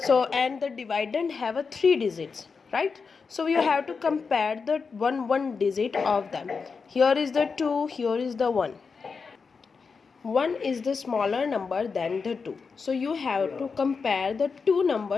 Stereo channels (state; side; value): quieter; right; 5.1 dB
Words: and the dividend have a 3 digits, right? So you have to compare the one digit of them. Here is the 2, here is the 1. 1 is the smaller number than the 2, so you have to compare the two